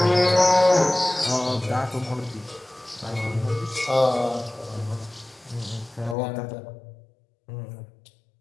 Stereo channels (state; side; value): drops out; right; at 6.2 s